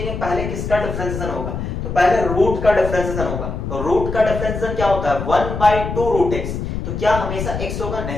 पहले किसका डिफरेंशिएशन होगा, तो पहले रूट का डिफरेंशिएशन होगा। तो रूट का डिफरेंशिएशन क्या होता है? 1/2 रूट x, तो क्या हमेशा x होगा?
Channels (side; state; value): left; noise; rumble, 5 dB below the sound